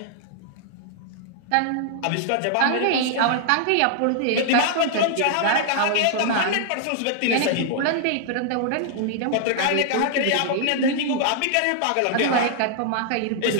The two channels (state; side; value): different; both; correlation -0.01